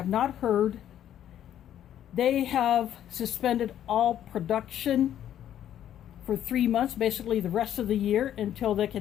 not heard, they have suspended all production for 3 months, basically the rest of the year, until they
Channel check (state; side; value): quieter; right; 10.9 dB